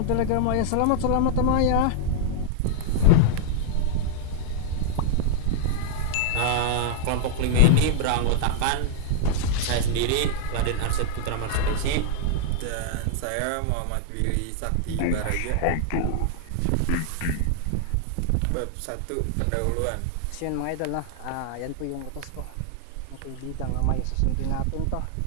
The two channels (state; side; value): different; both; correlation -0.01